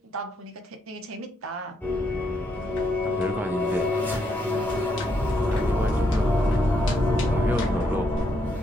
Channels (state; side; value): normal; both; correlation 0.76